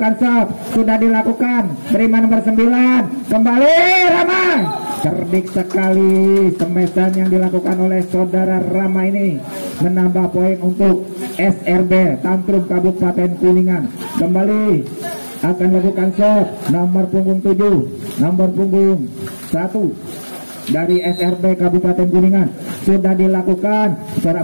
serve, sudah dilakukan, terima nomor 9. Kembali Rama, cerdik sekali semesan yang dilakukan oleh Saudara Rama ini, menambah poin untuk SRB Tantrum Kabupaten Kuningan. Kembali akan lakukan serve nomor punggung 7, nomor punggung 1 dari SRB Kabupaten Kuningan. Sudah dilakukan,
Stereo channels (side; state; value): both; inverted; correlation -1.00